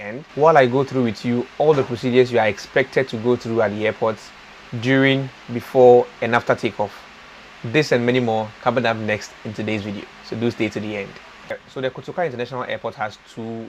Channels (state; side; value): identical; both; correlation 1.00